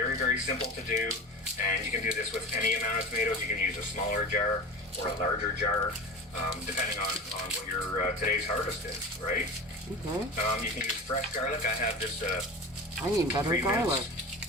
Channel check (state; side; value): normal; both; correlation 0.32